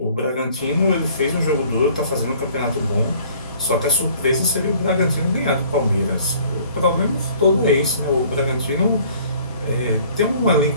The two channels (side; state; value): both; inverted; correlation -0.54